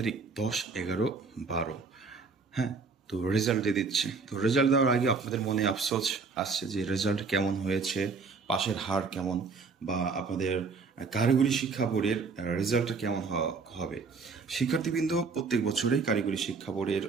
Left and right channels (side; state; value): left; quieter; 4.7 dB